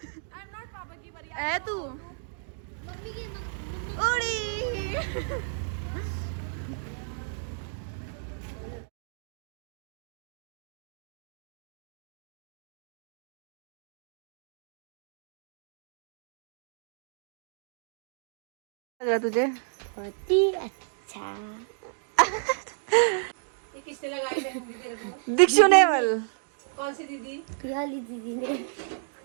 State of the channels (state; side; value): silent; left; digital silence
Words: एम नॉट पापा की बारी। है तू मम्मी की उड़ी। लग रहा तुझे? बहुत ही अच्छा। किसने लगाई मेहंदी तेरे को? दीक्षु नेवल। कौन सी दीदी? पियाली दीदी ने